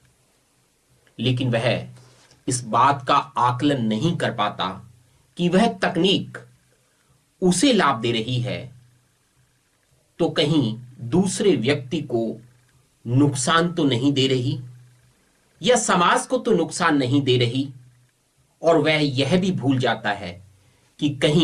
लेकिन वह इस बात का आकलन नहीं कर पाता कि वह तकनीक उसे लाभ दे रही है तो कहीं दूसरे व्यक्ति को नुकसान तो नहीं दे रही, या समाज को तो नुकसान नहीं दे रही। और वह यह भी भूल जाता है कि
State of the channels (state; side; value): identical; both; correlation 1.00